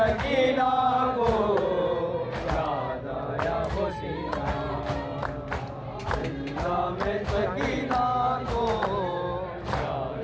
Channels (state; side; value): identical; both; correlation 1.00